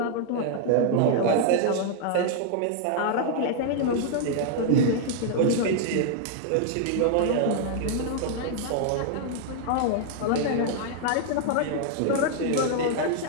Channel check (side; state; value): both; different; correlation 0.00